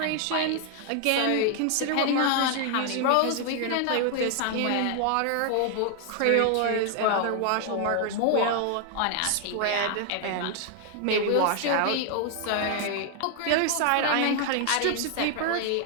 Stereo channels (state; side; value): different; both; correlation 0.00